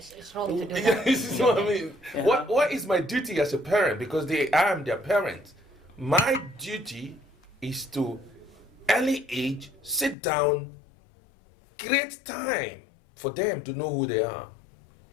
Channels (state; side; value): drops out; right; at 10.2 s